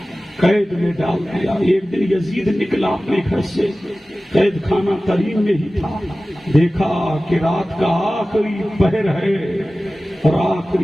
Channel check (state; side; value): normal; both; correlation 0.96